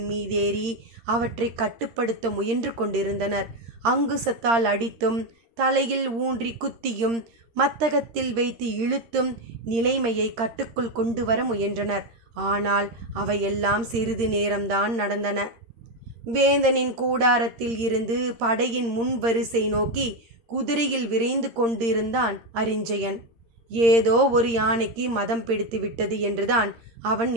மீதேறி அவற்றை கட்டுப்படுத்த முயன்று கொண்டிருந்தனர். அங்குசத்தால் அடித்தும் தலையில் ஊன்றி குத்தியும் மத்தகத்தில் வைத்து இழுத்தும் நிலைமையை கட்டுக்குள் கொண்டு வர முயன்றனர். ஆனால் அவையெல்லாம் சிறிது நேரம்தான் நடந்தன. வேந்தனின் கூடாரத்தில் இருந்து படையின் முன் வரிசை நோக்கி குதிரையில் விரைந்து கொண்டிருந்தான் அரிஞ்சயன். ஏதோ ஒரு யானைக்கு மதம் பிடித்து விட்டது என்றுதான் அவன்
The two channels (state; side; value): late; left; 13 ms